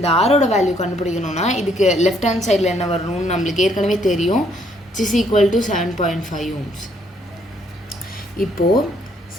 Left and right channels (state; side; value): normal; both; correlation 0.68